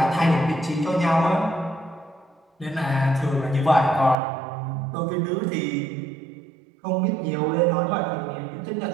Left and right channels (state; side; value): drops out; left; at 4.2 s